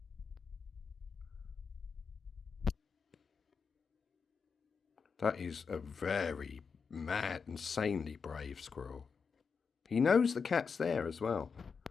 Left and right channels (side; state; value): right; quieter; 5.6 dB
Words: That is a very mad, insanely brave squirrel. He knows the cat's there as well.